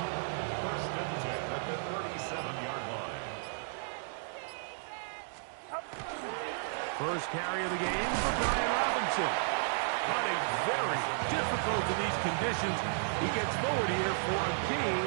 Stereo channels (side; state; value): left; silent; digital silence